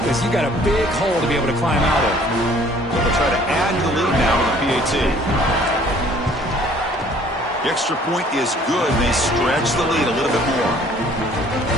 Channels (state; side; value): normal; both; correlation 0.56